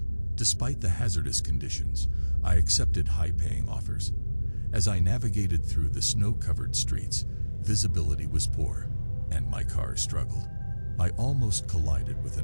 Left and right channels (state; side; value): inverted; both; correlation -1.00